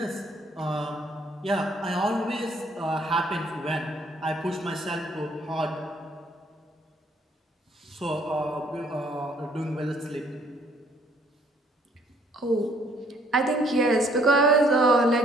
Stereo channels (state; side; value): normal; both; correlation 0.63